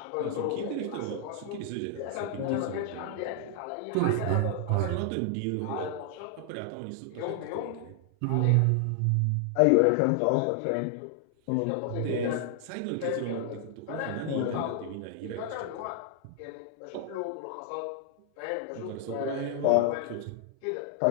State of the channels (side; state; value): both; different; correlation 0.00